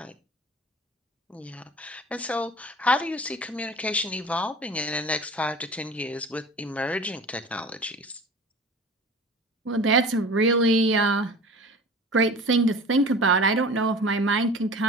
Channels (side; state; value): both; normal; correlation 0.39